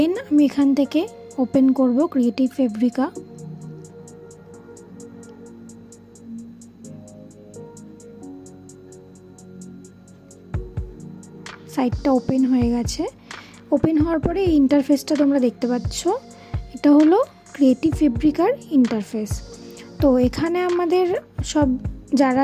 আমি এখান থেকে ওপেন করব ক্রিয়েটিভ ফেব্রিকা। সাইটটা ওপেন হয়ে গেছে। ওপেন হওয়ার পরে এই ইন্টারফেসটা তোমরা দেখতে পাচ্ছ, এটা হলো ক্রিয়েটিভ ফেব্রিকার ইন্টারফেস। তো এখানে আমাদের সব যারা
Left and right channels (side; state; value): both; identical; correlation 1.00